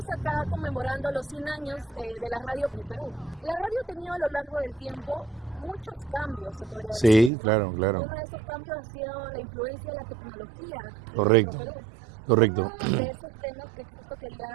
acá conmemorando los 100 años de la radio en Perú. La radio ha tenido a lo largo del tiempo muchos cambios, se podría decir. Sí, claro. Uno de esos cambios ha sido la influencia de la tecnología. Correcto. Uno de esos temas que justo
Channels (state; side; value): drops out; left; at 7.3 s